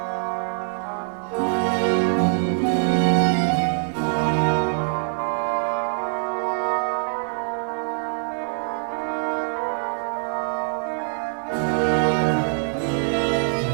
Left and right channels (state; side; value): silent; left; 63 dB below the other